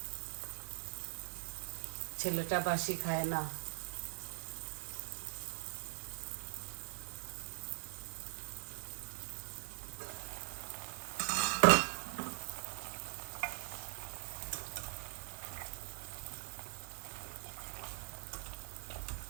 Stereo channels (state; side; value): silent; left; digital silence